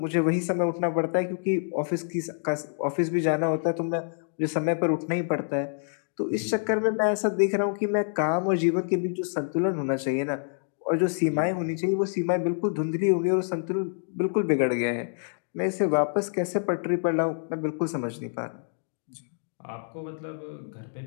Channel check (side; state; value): right; silent; digital silence